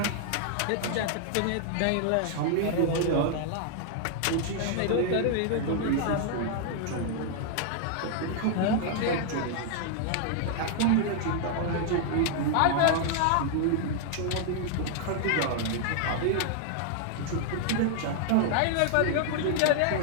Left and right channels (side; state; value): both; different; correlation 0.00